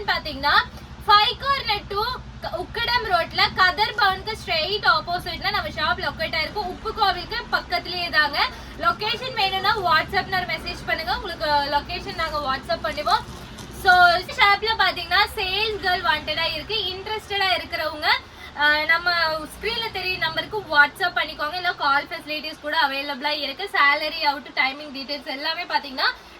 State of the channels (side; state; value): both; identical; correlation 1.00